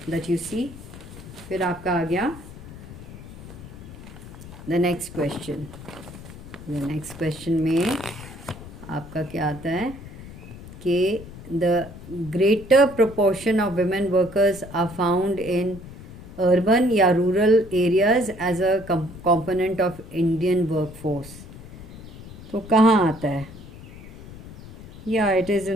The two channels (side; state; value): left; noise; rumble, 15 dB below the sound